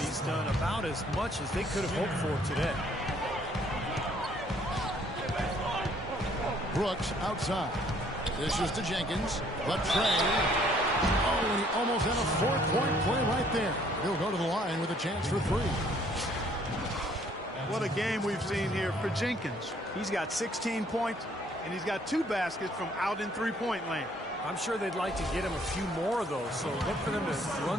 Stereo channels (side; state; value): both; normal; correlation 0.62